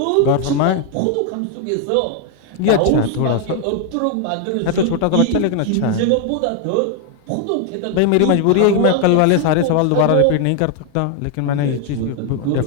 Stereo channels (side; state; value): both; different; correlation 0.00